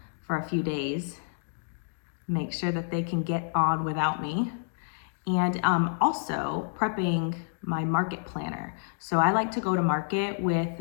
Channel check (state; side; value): silent; right; digital silence